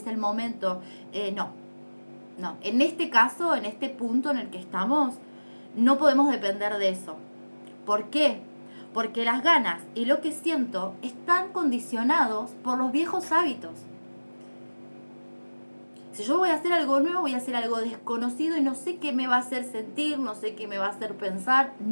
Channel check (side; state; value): both; inverted; correlation -1.00